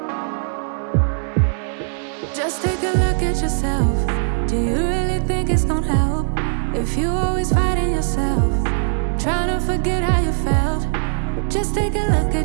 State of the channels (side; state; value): left; silent; digital silence